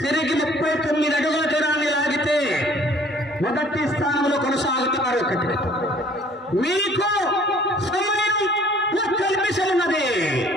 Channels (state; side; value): normal; both; correlation 0.55